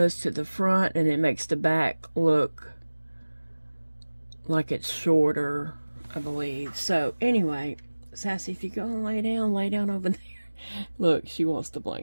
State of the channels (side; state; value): both; inverted; correlation -1.00